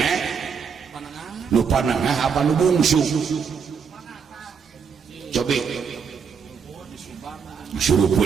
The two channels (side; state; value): left; quieter; 6.4 dB